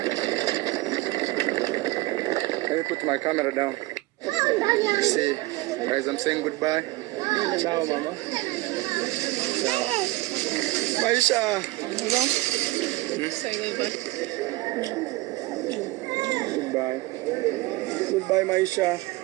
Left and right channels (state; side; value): quieter; left; 20.1 dB